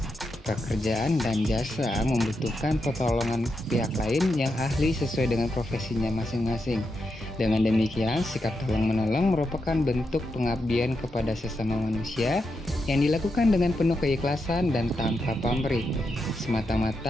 Pekerjaan dan jasa membutuhkan pertolongan pihak lain yang ahli sesuai dengan profesinya masing-masing. Dengan demikian, sikap tolong-menolong merupakan bentuk pengabdian kepada sesama manusia yang dilakukan dengan penuh keikhlasan dan tanpa pamrih,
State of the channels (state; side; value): normal; both; correlation 0.85